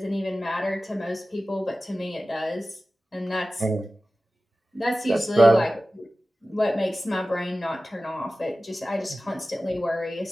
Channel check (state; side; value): normal; both; correlation 0.96